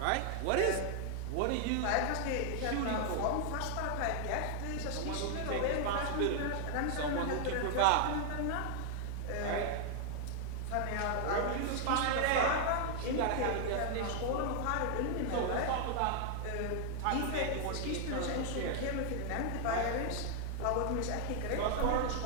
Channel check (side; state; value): both; different; correlation 0.00